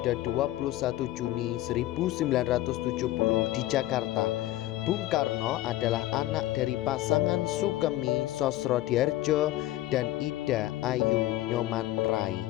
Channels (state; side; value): quieter; right; 15.5 dB